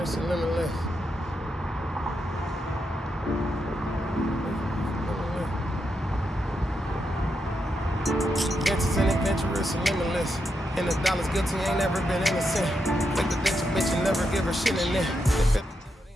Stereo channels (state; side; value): normal; both; correlation 0.84